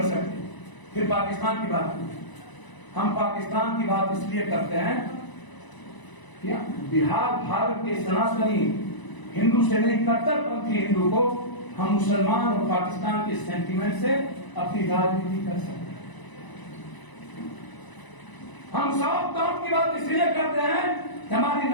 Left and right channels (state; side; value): late; right; 1.0 ms